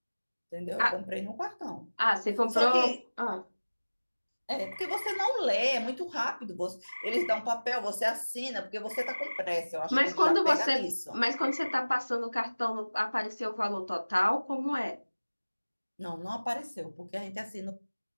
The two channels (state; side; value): inverted; both; correlation -1.00